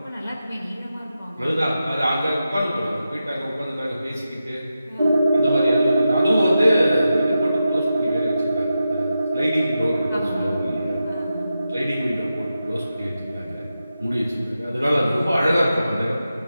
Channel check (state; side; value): inverted; both; correlation -0.90